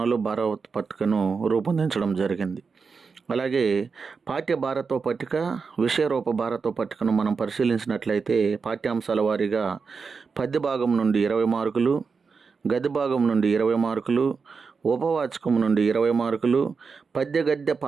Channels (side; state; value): left; quieter; 5.1 dB